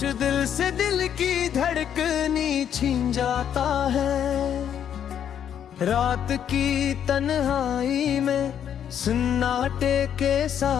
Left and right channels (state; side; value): quieter; right; 9.2 dB